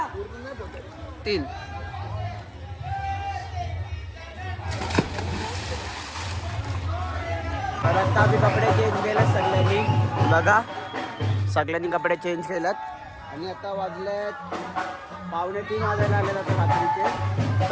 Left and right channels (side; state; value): both; identical; correlation 1.00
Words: 3 तर आता आम्ही कपडे चेंज केलेत सगळ्यांनी. बघा सगळ्यांनी कपडे चेंज केलेत आणि आता वाजलेत 2:45 वाजायला आलेत आता रात्रीचे.